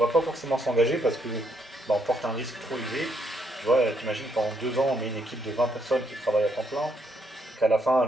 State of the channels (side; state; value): both; normal; correlation 0.74